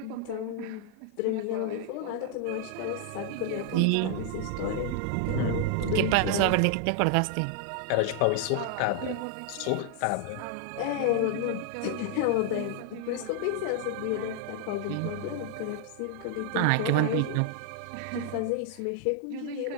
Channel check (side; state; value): both; different; correlation 0.00